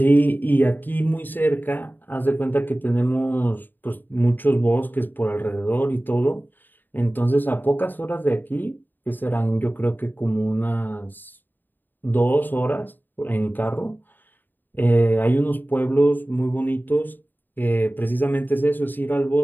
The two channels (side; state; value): right; late; 0.090 ms